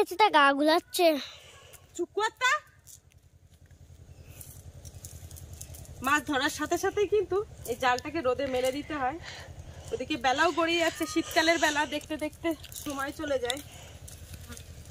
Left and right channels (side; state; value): both; identical; correlation 1.00